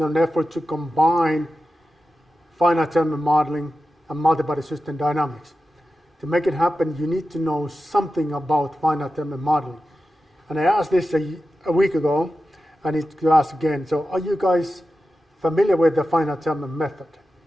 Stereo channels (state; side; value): normal; both; correlation 0.92